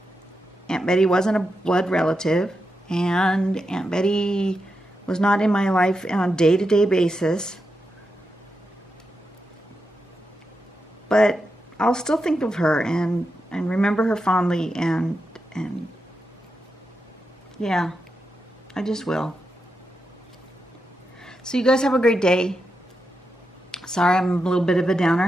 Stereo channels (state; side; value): normal; both; correlation 0.87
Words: Aunt Betty wasn't a blood relative, and Aunt Betty was not in my life on a day-to-day basis. But I'll still think of her and remember her fondly, and yeah, I just will. So you guys have a great day. Sorry I'm a little bit of a